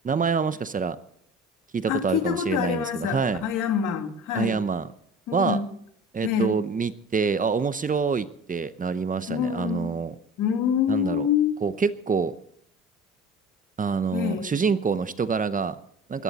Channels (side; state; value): both; normal; correlation 0.39